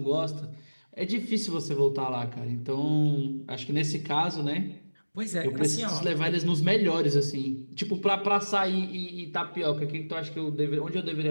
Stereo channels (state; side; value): inverted; both; correlation -1.00